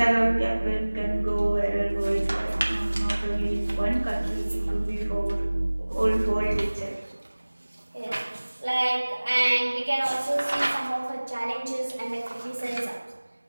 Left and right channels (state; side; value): inverted; both; correlation -1.00